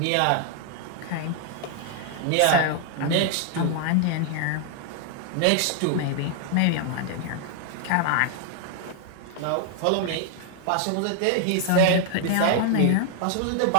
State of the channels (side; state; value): both; different; correlation 0.00